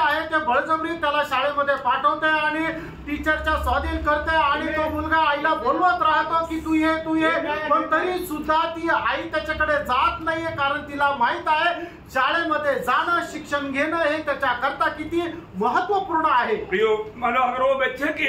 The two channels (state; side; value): identical; both; correlation 1.00